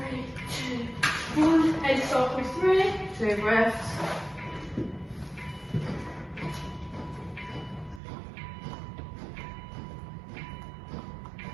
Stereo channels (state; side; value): drops out; left; at 8.0 s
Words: 2, 1, and cycle 3. 2 breaths.